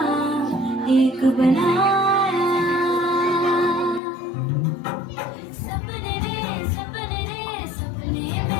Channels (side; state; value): right; drops out; at 4.0 s